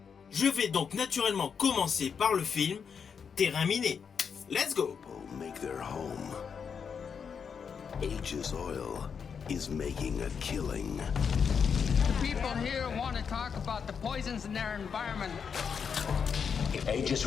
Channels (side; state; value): right; quieter; 6.6 dB